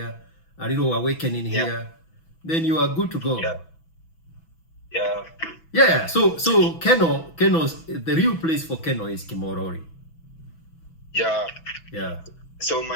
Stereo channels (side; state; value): right; late; 6.1 ms